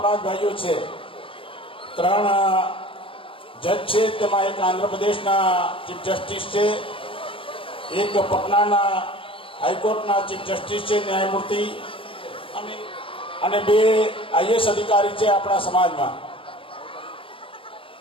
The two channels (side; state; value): right; late; 0.26 ms